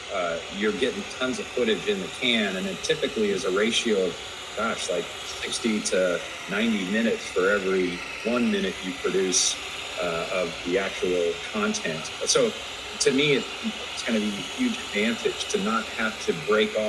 you're getting tons of footage in the can, and it typically is a ratio of, like 60 to 90 minutes for every 1 minute you produce of the actual content. So to me, it's going to be a huge advantage to not have to break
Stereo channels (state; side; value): identical; both; correlation 1.00